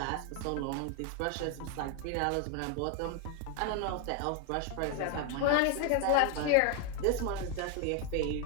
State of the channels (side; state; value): both; different; correlation 0.01